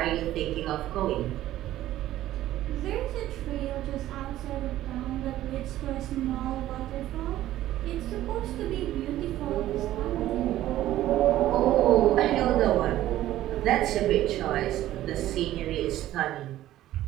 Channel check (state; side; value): quieter; left; 14.0 dB